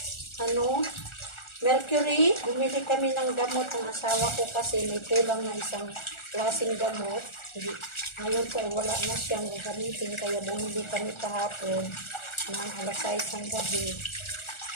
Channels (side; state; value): right; late; 1.4 ms